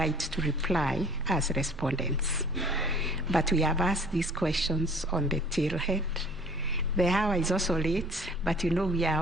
to reply as respondents. But we have asked these questions on the tailhead. The hour is also late, but you know we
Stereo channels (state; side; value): normal; both; correlation 0.50